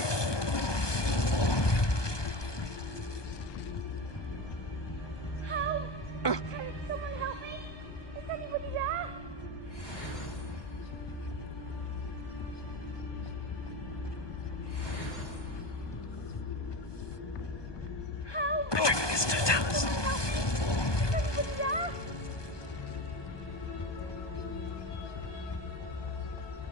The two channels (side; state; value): right; late; 1.2 ms